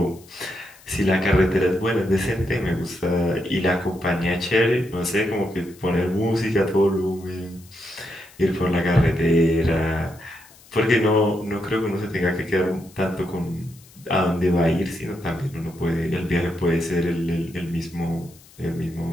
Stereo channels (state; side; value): noise; left; hiss, 25 dB below the sound